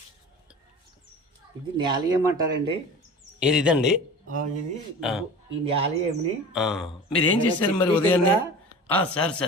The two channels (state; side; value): normal; both; correlation 0.37